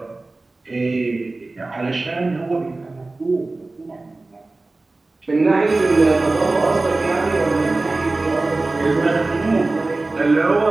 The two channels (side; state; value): left; quieter; 3.2 dB